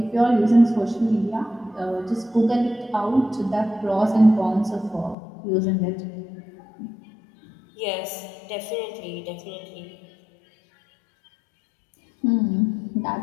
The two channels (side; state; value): right; drops out; at 5.2 s